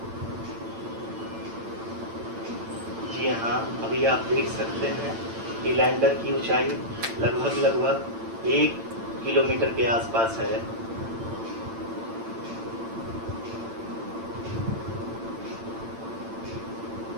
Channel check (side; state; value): left; late; 8.9 ms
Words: जी हाँ, अभी आप देख सकते हैं कि लैंडर की ऊंचाई लगभग 1 किलोमीटर के आसपास है।